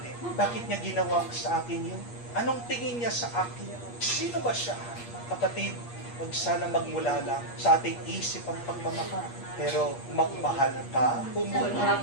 bakit niya ginawa sa akin yun? Anong tingin niya sa akin? Sino ba siya? Kapatid, huwag sana magmula lang sa ating isip ang pagmamahal. Pero magmahal ka, pumunod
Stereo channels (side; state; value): right; late; 8.4 ms